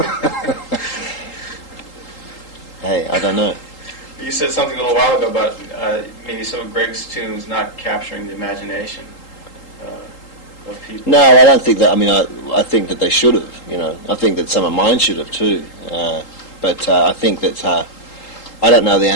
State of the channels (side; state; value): right; late; 3.8 ms